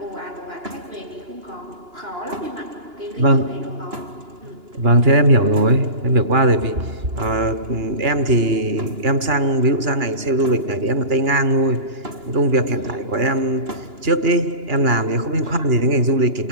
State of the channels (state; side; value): late; left; 2.9 ms